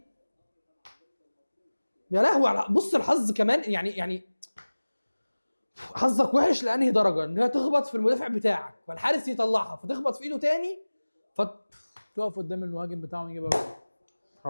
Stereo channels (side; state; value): both; inverted; correlation -1.00